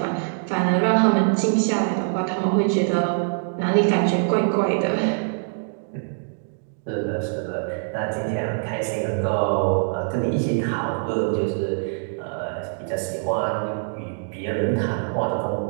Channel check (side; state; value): left; silent; 63 dB below the other